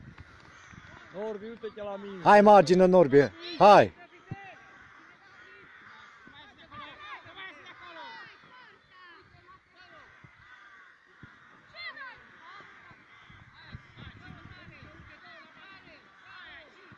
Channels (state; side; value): identical; both; correlation 1.00